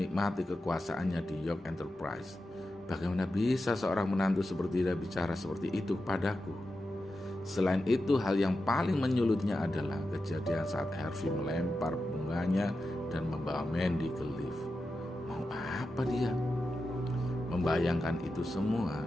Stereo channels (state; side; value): normal; both; correlation 0.90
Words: kekuasaannya di York Enterprise. Bagaimana bisa seorang menantu seperti dia bicara seperti itu padaku? Selain itu, hal yang paling menyulitnya adalah kejadian saat Harvey melempar bunganya dan membawa Mandy ke lift. Mau apa dia? Membayangkan itu semua,